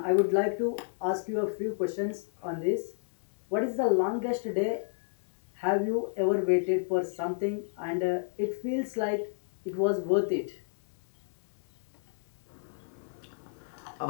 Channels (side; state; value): right; silent; 57 dB below the other